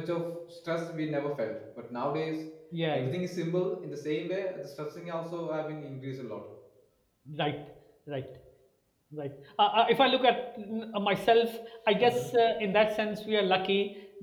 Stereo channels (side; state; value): both; identical; correlation 1.00